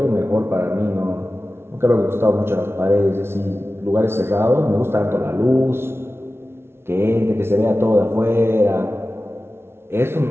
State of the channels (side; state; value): left; late; 0.12 ms